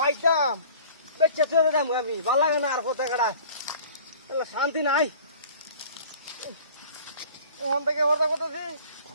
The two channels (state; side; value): inverted; both; correlation -0.47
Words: বেচে চলে যাবো আমি ভালো লাগে না আর পথে কাটা শান্তি নাই ওখান থেকে বর্ষা করতেছি